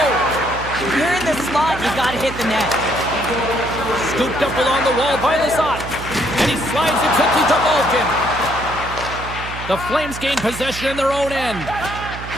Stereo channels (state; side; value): noise; right; hum, 11 dB below the sound